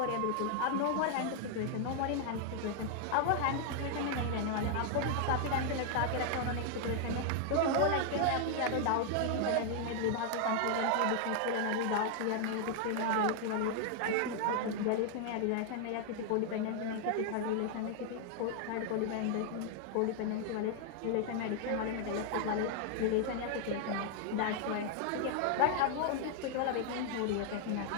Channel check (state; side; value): different; both; correlation 0.00